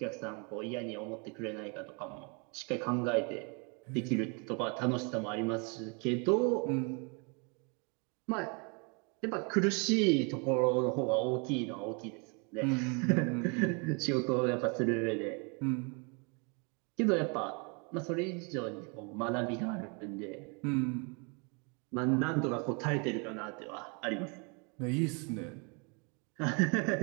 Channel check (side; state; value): left; quieter; 34.0 dB